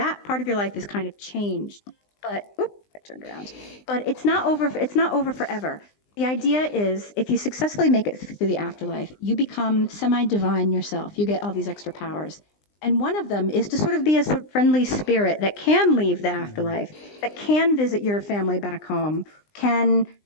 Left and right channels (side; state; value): right; late; 20 ms